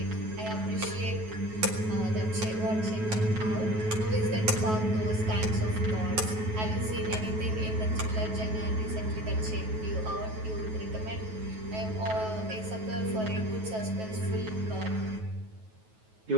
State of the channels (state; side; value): late; left; 9.3 ms